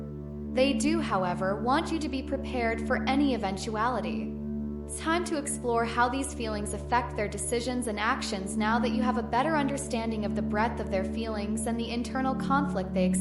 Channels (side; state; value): both; identical; correlation 1.00